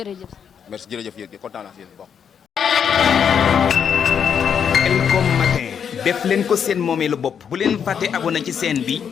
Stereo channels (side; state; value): right; quieter; 7.6 dB